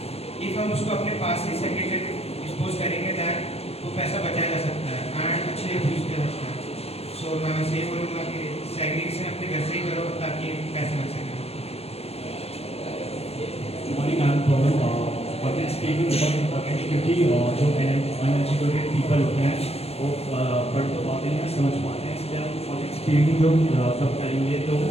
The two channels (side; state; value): right; late; 0.29 ms